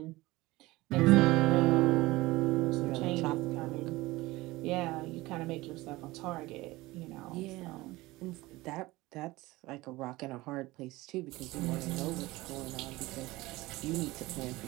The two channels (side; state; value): left; quieter; 19.9 dB